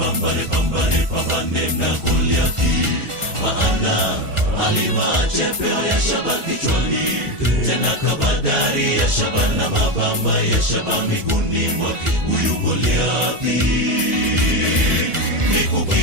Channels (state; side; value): late; left; 1.4 ms